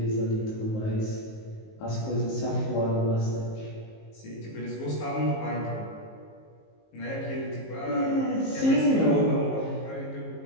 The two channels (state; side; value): late; right; 19 ms